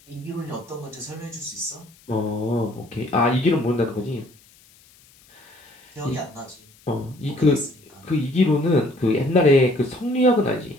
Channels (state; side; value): noise; left; hiss, 28 dB below the sound